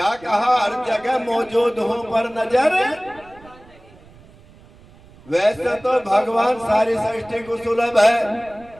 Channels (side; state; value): right; noise; rumble, 24 dB below the sound